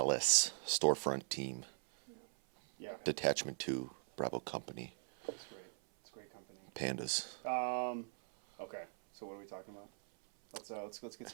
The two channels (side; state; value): left; silent; 51 dB below the other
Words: storefront team. Yeah. Detachment 2, Bravo Company. It's great. It's great company. Pandas. Okay. So what are we talking about? Let's get